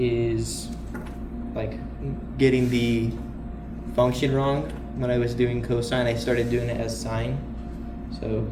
getting the function wrong. When I was doing cosine, I started doing it as sine. So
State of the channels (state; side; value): identical; both; correlation 1.00